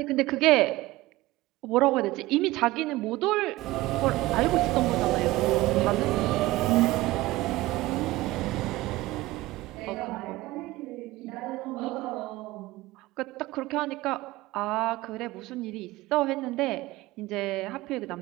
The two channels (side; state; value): left; quieter; 18.6 dB